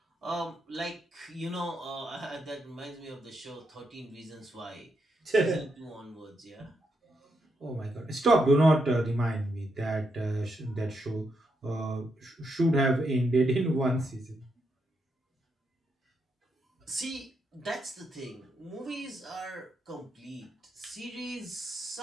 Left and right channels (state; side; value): normal; both; correlation 0.81